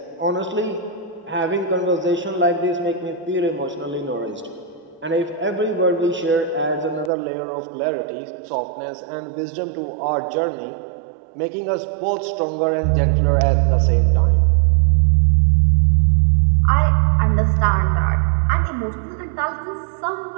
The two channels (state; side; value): drops out; left; at 7.1 s